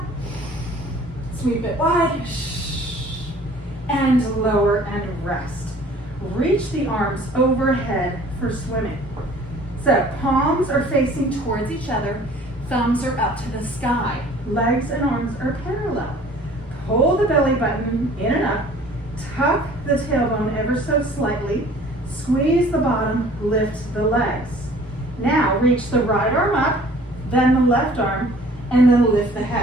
Sweep it wide, and lower and rest. Reach the arms overhead for swimming. So palms are facing towards each other, thumbs are up to the sky, legs and arms are parallel. Pull the belly button in and up, tuck the tailbone ever so slightly, squeeze the bottom, lift the legs. Now reach the right arm up, then the left arm, and then lift the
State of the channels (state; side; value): normal; both; correlation 0.51